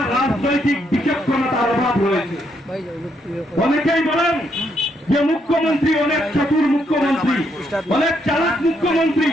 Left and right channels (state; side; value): normal; both; correlation 0.75